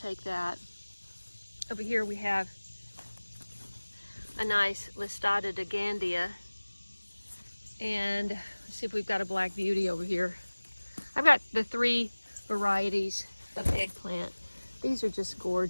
that. Over here we have a nice Listata Gandia. And let's see if we've got a black beauty over here. I've got the 3 varieties of eggplant. These are just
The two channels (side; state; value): both; inverted; correlation -1.00